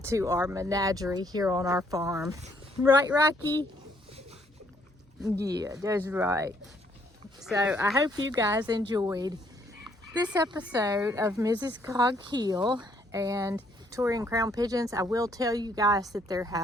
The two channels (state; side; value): normal; both; correlation 0.68